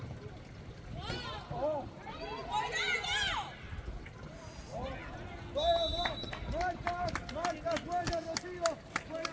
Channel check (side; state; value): both; identical; correlation 1.00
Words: Oh. Marcas, buena, Rocío. Buena